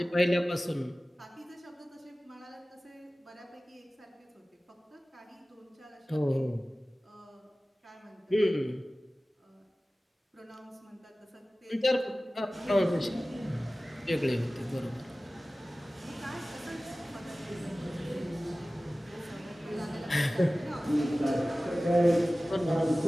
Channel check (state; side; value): normal; both; correlation 0.97